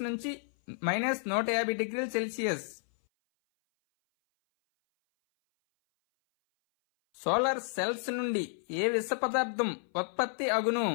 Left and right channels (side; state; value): right; silent; 57 dB below the other